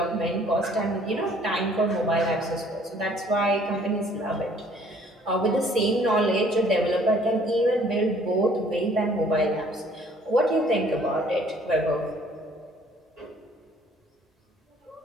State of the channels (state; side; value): normal; both; correlation 0.58